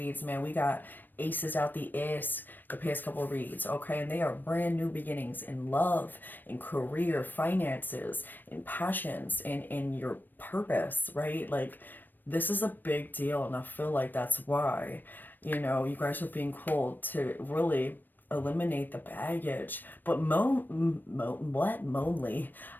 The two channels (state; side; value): late; right; 0.091 ms